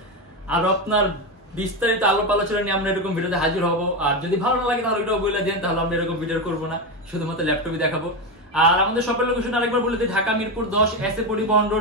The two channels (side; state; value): both; normal; correlation 0.14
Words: বিস্তারিত আলাপ আলোচনা নিয়ে আমরা এরকম ভিডিওতে হাজির হব। আর যদি ভালো না লাগে তাহলে ওইটাও বলে দেন, তাহলে আমরা এরকম ভিডিও করবো না, শুধুমাত্র ল্যাপটপই দেখাবো। আর আমাদের শপের লোকেশন আরেকবার বলে দিই, ঢাকা মিরপুর 10 এসএ পরিবহন